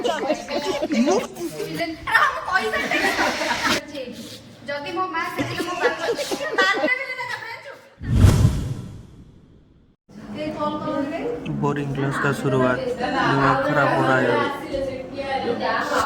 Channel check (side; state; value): both; identical; correlation 1.00